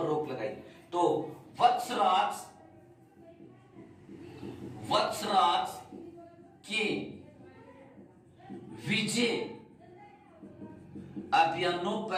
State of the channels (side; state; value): both; identical; correlation 1.00